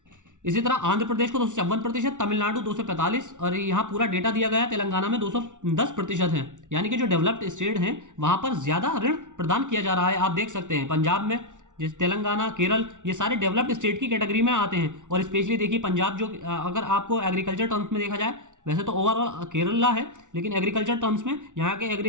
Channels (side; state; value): left; late; 0.86 ms